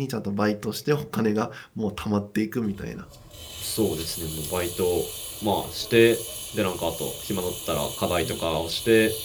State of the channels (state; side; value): identical; both; correlation 1.00